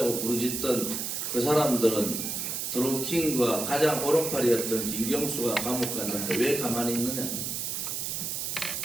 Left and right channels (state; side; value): noise; right; hiss, 3 dB below the sound